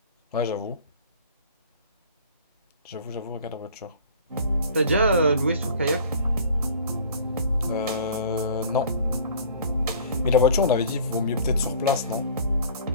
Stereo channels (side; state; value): both; inverted; correlation -0.48